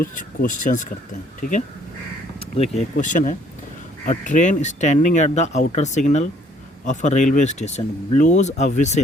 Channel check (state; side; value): normal; both; correlation 0.62